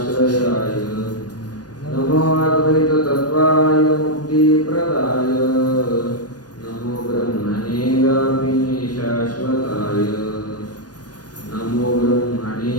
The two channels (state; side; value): late; right; 0.69 ms